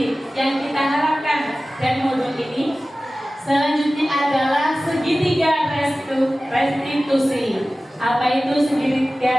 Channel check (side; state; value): both; normal; correlation 0.96